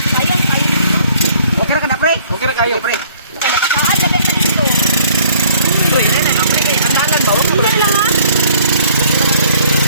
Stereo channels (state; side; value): inverted; both; correlation -0.57